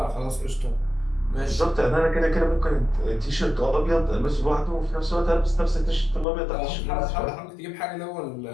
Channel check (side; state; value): right; drops out; at 6.2 s